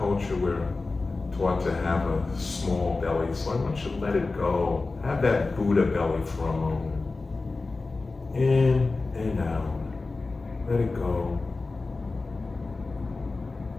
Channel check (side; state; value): right; quieter; 3.6 dB